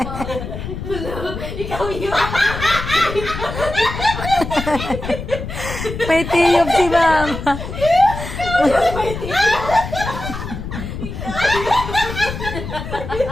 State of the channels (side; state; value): left; noise; rumble, 7 dB below the sound